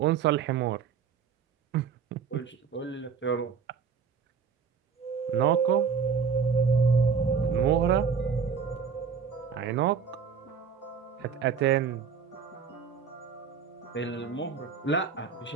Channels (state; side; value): quieter; left; 6.3 dB